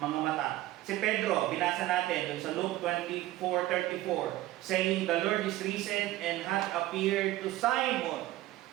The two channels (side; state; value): left; quieter; 16.0 dB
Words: mata. Si Pedro, binasa natin dun sa Luke 24:34, saying, The Lord is risen and hath appeared to Simon.